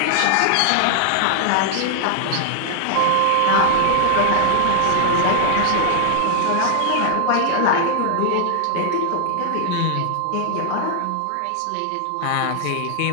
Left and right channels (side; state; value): both; different; correlation -0.01